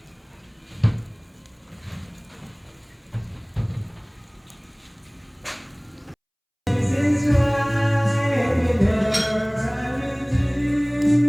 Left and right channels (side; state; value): both; identical; correlation 1.00